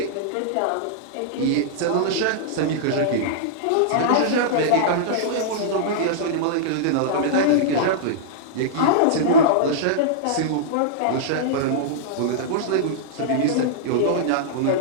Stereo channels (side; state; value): both; different; correlation -0.02